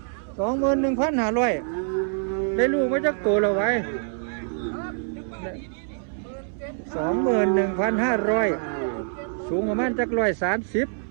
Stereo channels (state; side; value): silent; left; 62 dB below the other